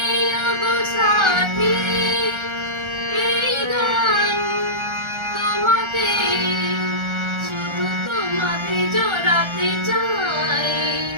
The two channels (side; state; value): left; late; 1.3 ms